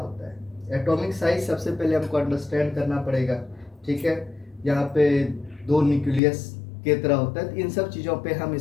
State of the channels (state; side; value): drops out; right; at 6.2 s